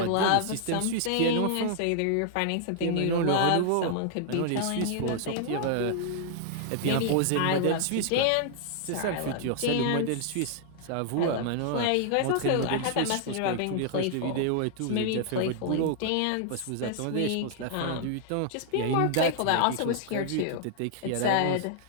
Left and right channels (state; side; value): different; both; correlation -0.01